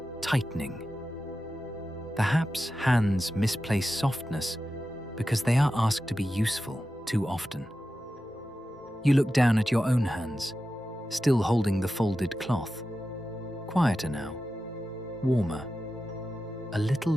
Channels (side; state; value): both; normal; correlation 0.92